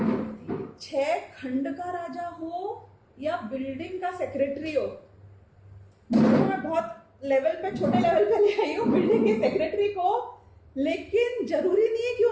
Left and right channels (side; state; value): both; identical; correlation 1.00